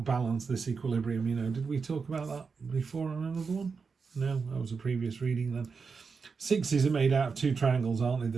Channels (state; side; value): quieter; left; 5.2 dB